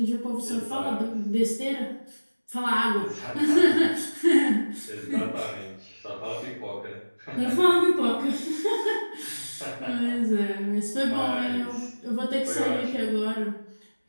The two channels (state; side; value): inverted; both; correlation -1.00